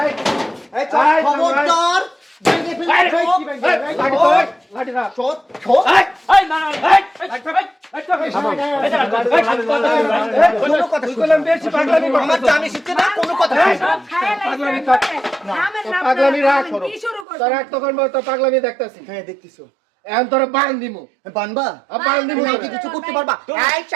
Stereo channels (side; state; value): left; drops out; at 17.2 s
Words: এই খবরদার ভেঙে ফেলবে লাঠি না ছোট ছোট এই না এই কোনো কথা বললাম বেশি পাগলামি আমার জানি শিখছে না কোনো কথা পাগলামি পাগলামি রাখ তোর এক তখন তো পাগলামি দেখতাছি হ্যাঁ দেখতেছো এখন তোর বান দিমু বানবা বান দিমু তুমি কি কিছু করতে পারবা এই